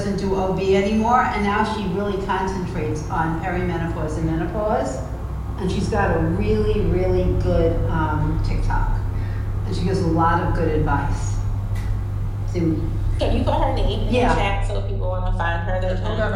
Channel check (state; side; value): identical; both; correlation 1.00